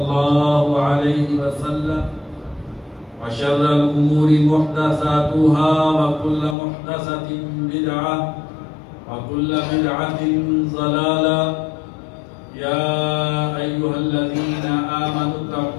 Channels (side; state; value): right; drops out; at 6.6 s